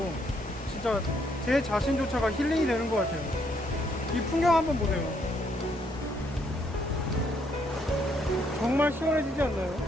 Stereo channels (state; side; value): normal; both; correlation 0.72